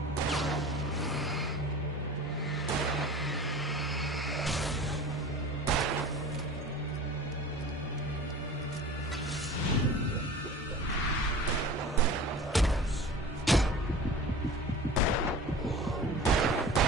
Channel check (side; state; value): both; normal; correlation 0.39